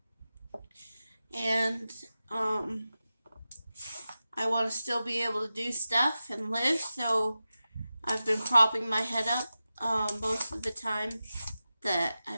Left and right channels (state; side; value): inverted; both; correlation -0.94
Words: And I want to still be able to do stuff and live, so I've been propping my head up most of the time that